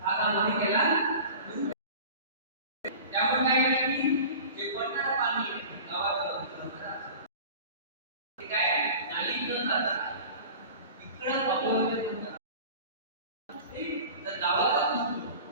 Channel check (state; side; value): inverted; both; correlation -0.39